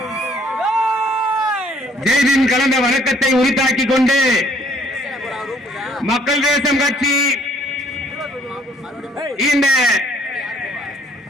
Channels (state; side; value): normal; both; correlation 0.62